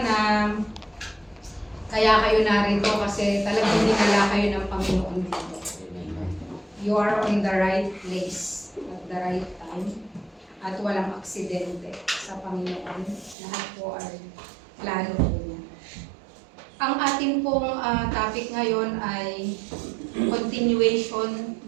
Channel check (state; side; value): drops out; left; at 13.4 s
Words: kaya kayo narito kasi talagang dinala kayo ng Panginoon dito. You are on the right place at the right time at walang aksidente sa Panginoon. Lahat po ay plano po niya. Ang atin pong topic ngayon ay continuation